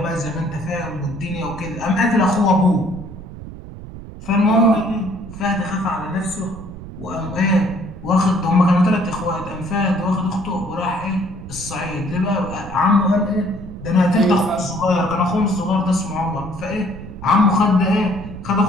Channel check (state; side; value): noise; right; rumble, 13 dB below the sound